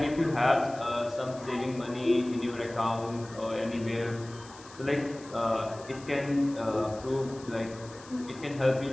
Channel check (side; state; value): left; noise; hiss, 20 dB below the sound